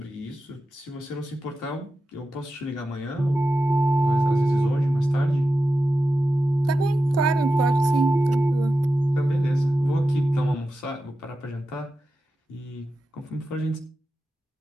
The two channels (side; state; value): both; normal; correlation 0.91